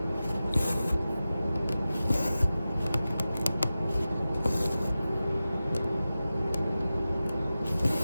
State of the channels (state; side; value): inverted; both; correlation -0.95